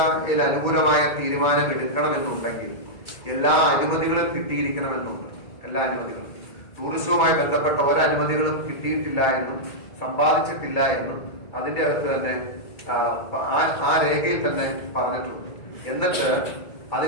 അനുകൂലമായ തീരുമാനം എടുക്കണമെന്നുണ്ടെങ്കിൽ എല്ലാ അനുമതികളും കിട്ടിയിരിക്കണമെന്നുണ്ട്. എല്ലാ അനുമതികളും ടൂറിസവുമായി ബന്ധപ്പെട്ട ഒരനുമതികളും കിട്ടിയിട്ടില്ല എന്നും സമ്പാദിച്ചിട്ടില്ല എന്നും അതിന്റെ അകത്ത് തന്നെ ആ രേഖയിൽ തന്നെ പറഞ്ഞിട്ടുണ്ട്. എന്നിട്ട്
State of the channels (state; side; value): late; right; 2.3 ms